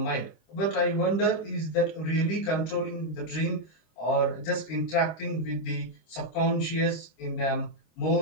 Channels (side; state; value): right; late; 25 ms